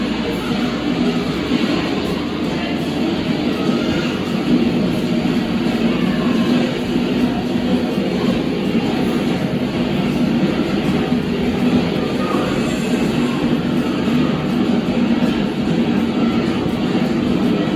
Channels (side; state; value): both; identical; correlation 1.00